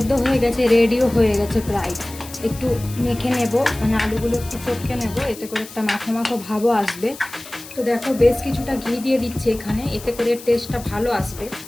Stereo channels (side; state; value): left; noise; hiss, 16 dB below the sound